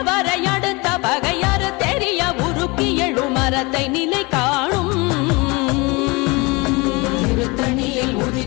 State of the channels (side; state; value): right; quieter; 26.0 dB